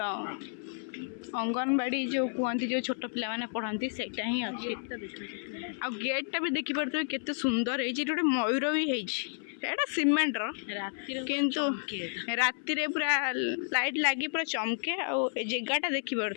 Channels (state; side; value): silent; right; 57 dB below the other